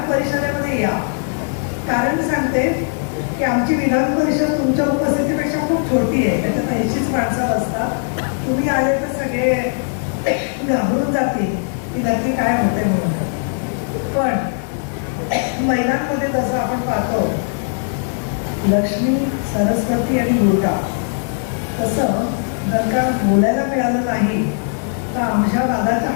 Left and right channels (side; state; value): right; silent; digital silence